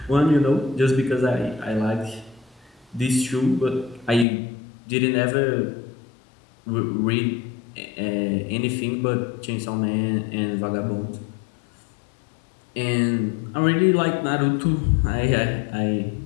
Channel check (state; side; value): drops out; right; at 4.2 s